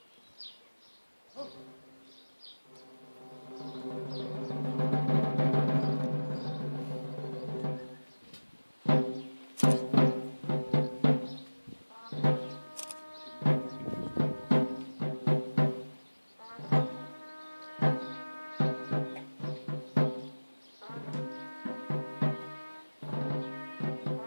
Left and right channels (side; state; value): both; inverted; correlation -1.00